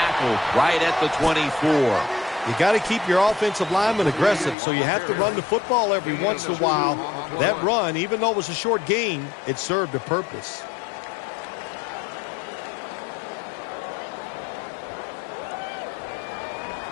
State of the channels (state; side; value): drops out; right; at 4.5 s